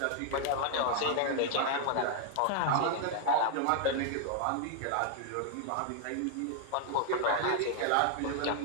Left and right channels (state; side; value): different; both; correlation 0.00